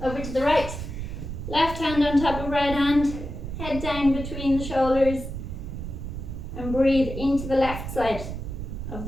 over to the right. Left hand on top of right hand, head down between the shoulders, and breathe into the left side of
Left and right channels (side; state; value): right; noise; rumble, 7 dB below the sound